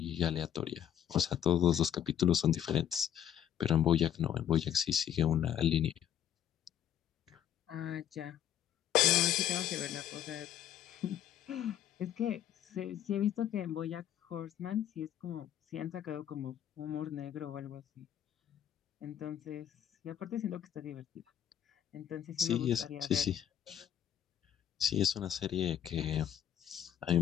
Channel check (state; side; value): quieter; right; 10.3 dB